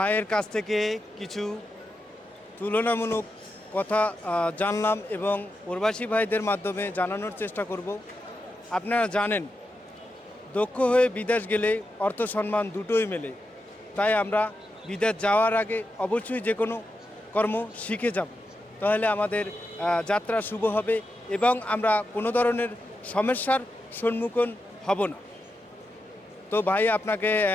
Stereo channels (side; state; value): both; normal; correlation 0.87